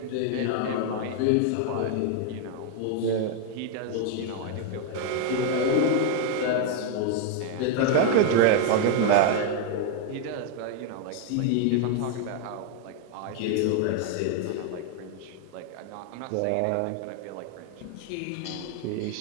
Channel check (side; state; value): both; different; correlation 0.01